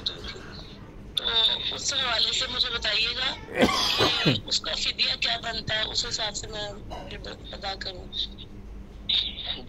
ہوئی تھی، تو اس حوالے سے مجھے بتائیے گا کہ اس کا فدیہ کیا بنتا ہے، اس حساب سے میں ادا کروں۔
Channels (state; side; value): identical; both; correlation 1.00